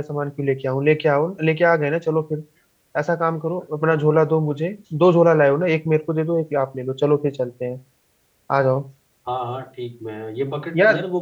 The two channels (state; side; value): identical; both; correlation 1.00